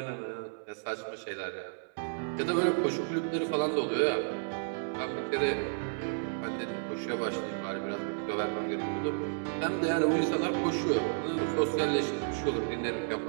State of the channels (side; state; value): left; silent; 56 dB below the other